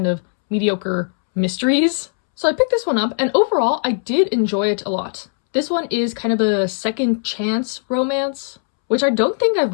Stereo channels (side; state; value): right; silent; 67 dB below the other